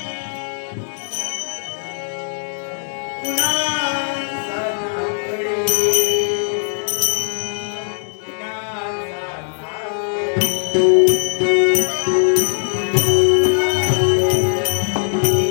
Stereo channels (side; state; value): right; silent; digital silence